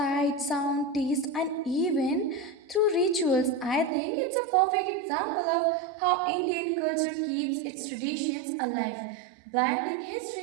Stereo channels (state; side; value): drops out; left; at 3.9 s